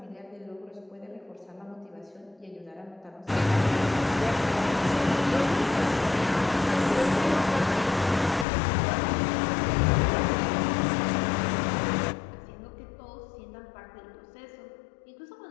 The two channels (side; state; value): right; drops out; at 8.5 s